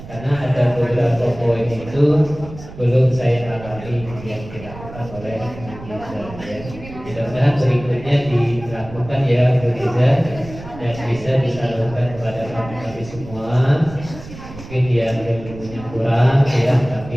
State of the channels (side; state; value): right; noise; rumble, 15 dB below the sound